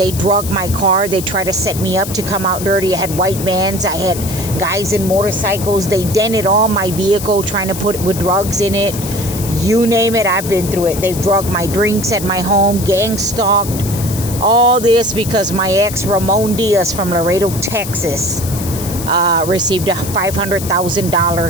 drugged my car. They tried to set me up to come out dirty. I had white vans. I had guys in motorcycles. They dented all my vehicle, trying to put with drugs in it. You name it, I've been through it. They've drugged my drinks at my home, gang stalked. All this because my ex, Ramon Diaz from Laredo, Texas, received a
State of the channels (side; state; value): left; noise; hiss, 10 dB below the sound